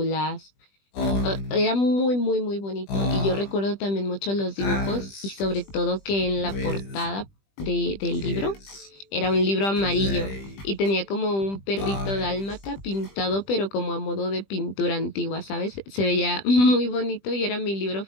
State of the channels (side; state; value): right; late; 20 ms